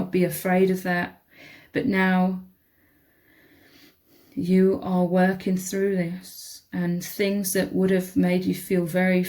be afraid of that. But now you are working through this, and things that would have made you feel very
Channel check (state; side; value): identical; both; correlation 1.00